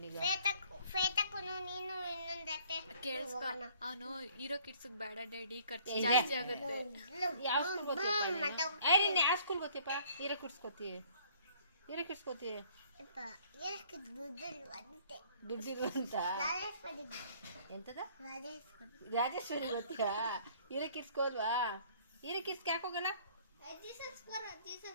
ಶ್ವೇತಕ್ಕೂನು ನೀನು ಇನ್ನೊಂದು ಹತ್ತೆ ಕೇಳಿಸ್ಕೊ ಅವನು ಹೀರೋ ಕಿಡ್ಸ್ ಬೇಡ ಡ್ಯಾಡಿ ಖರ್ಚು ಜಾಸ್ತಿ ಆಗುತ್ತೆ. ಯಾವ ಸ್ಕೂಲ್ ಗೊತ್ತಿಯಪ್ಪ ಏ ನೀನು ಯಾವ ಸ್ಕೂಲ್ ಗೊತ್ತಿಯಪ್ಪ ಹೀರೋ ಕಿಡ್ಸ್ ಗೊತ್ತೀಯ ದುಡ್ಡಿರು ಅಂತ ಎಂತದ ರಾಜೇಶ್ವರಿ ಗೊತ್ತಿಯಾ ಹೀರೋ ಕಿಡ್ಸ್ಗೆ ಹೋಲ್ವಾ ಹೀರೋ ಕಿಡ್ಸ್ಗೆ ಯಾಕೆ ಹೋಗಲ್ಲ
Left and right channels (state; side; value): inverted; both; correlation -0.57